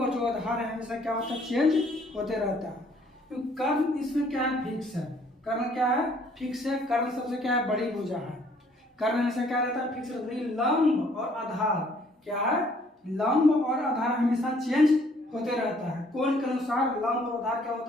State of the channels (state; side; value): normal; both; correlation 0.62